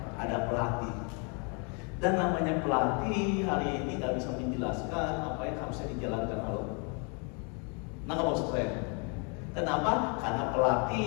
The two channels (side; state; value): right; quieter; 35.8 dB